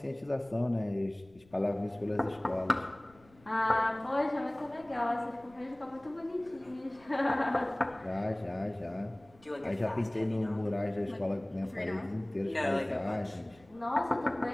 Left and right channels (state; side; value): noise; left; rumble, 28 dB below the sound